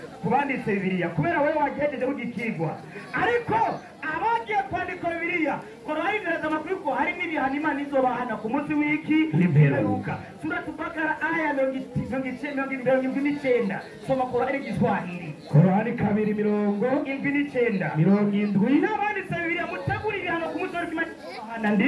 kubanditse Bibiliya kubera wewe wagejeje kugikigwa ariko abagiye kwandika Bibiliya Qur'ani iraza amakuru ko hari n'ibihano Imana izobahana ku munsi w'iki n'imperuka sura Bakara aya 29 soma Qur'ani Kiswahili Qur'ani 2:79 n'abanditse Bibiliya mutegura ibihano ku munsi w'Imana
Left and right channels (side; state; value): both; identical; correlation 1.00